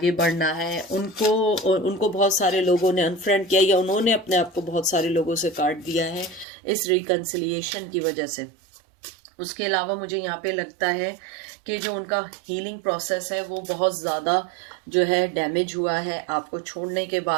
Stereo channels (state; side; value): drops out; left; at 6.5 s